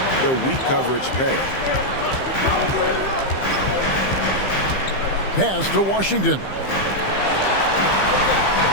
the weak coverage pay. Pass to Washington.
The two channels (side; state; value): right; late; 15 ms